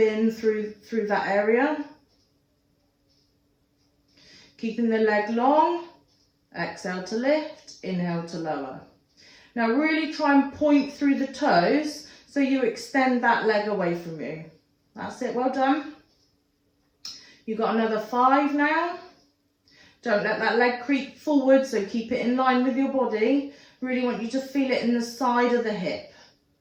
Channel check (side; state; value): both; identical; correlation 1.00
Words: through that area. Keeping the leg long, exhale to lift, inhale to lower. Now really try and point through the toes so you extend that leg away from you. That's it, well done. You've got another 5 now. Don't let that leg creep forward, so keep it in line with your body. Really want you to feel it in the side of the hip.